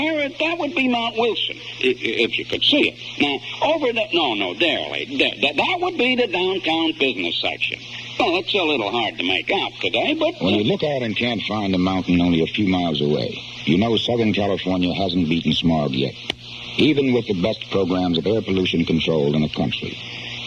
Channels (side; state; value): both; identical; correlation 1.00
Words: that would be Mount Wilson, if you could see it. Now, over there, that would be the downtown business section. Well, it's a little hard to make out today, but... When you look out and can't find the mountain only a few miles away, you know Southern California hasn't beaten smog yet, even with the best programs of air pollution control in the country.